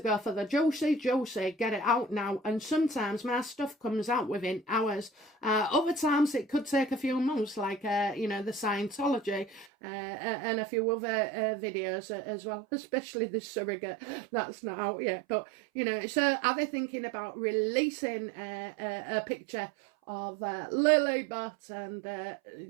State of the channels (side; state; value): left; drops out; at 9.7 s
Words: go for the juicy, get it out now. And sometimes my stuff comes out within hours. Other times it could take a few months, like, you know, the Scientology and a few other videos as well, especially the surrogate. That's not out yet. But, you know, so are they thinking about releasing a picture of Lilybet and,